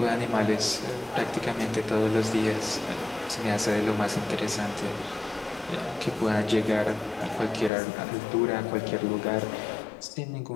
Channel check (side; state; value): right; drops out; at 7.7 s